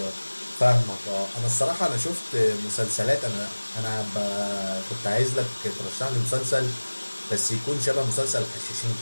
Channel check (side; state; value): both; inverted; correlation -1.00